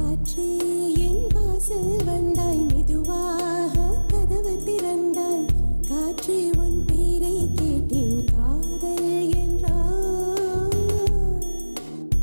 என் வாசல் வந்தாய், மெதுவாக கதவு திறந்தாய். காற்றே உன் பேரை கேட்டேன், காதல் என்றாய்.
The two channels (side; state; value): both; inverted; correlation -1.00